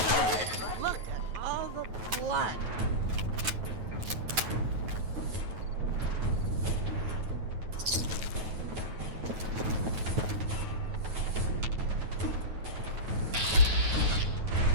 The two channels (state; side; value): late; left; 9.3 ms